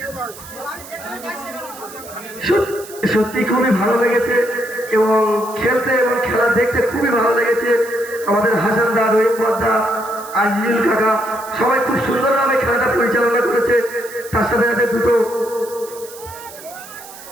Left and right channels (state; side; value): noise; right; hiss, 17 dB below the sound